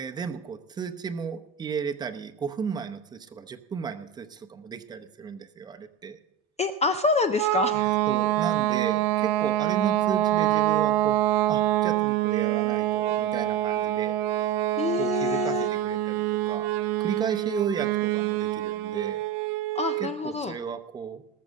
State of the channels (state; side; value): quieter; left; 7.5 dB